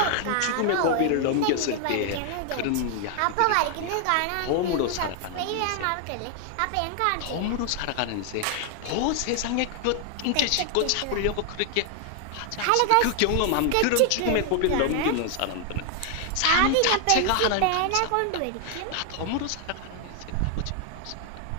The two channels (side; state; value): both; different; correlation 0.00